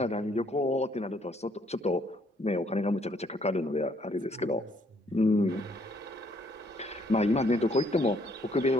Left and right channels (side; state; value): both; normal; correlation 0.67